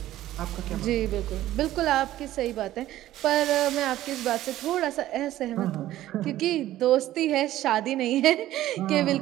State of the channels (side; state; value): left; quieter; 14.2 dB